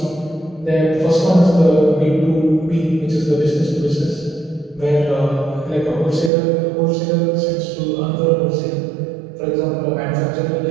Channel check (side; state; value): left; drops out; at 6.3 s